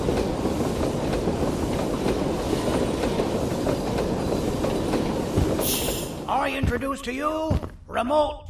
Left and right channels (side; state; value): both; identical; correlation 1.00